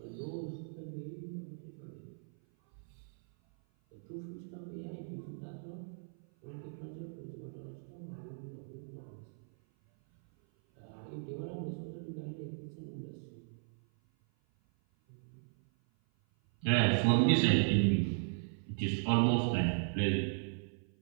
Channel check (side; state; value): left; silent; 53 dB below the other